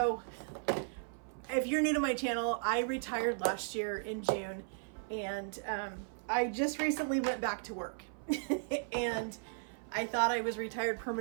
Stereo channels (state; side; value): silent; left; 54 dB below the other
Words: if you're new to my channel, I retired last year in June, and I just recently went back to work. And I thought I was retired